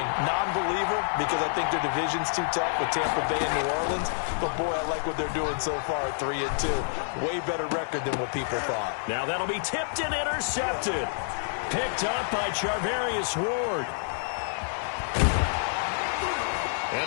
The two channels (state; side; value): silent; right; digital silence